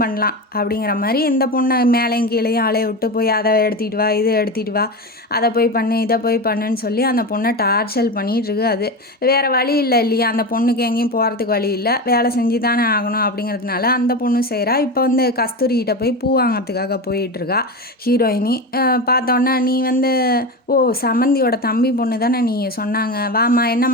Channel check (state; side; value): normal; both; correlation 0.22